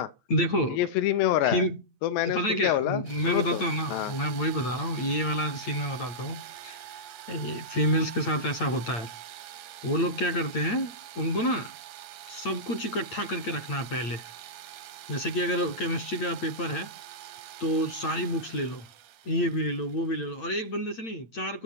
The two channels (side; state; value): right; late; 8.8 ms